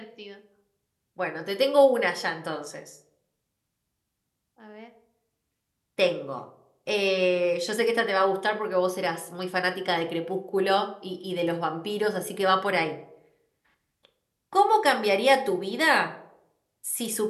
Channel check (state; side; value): identical; both; correlation 1.00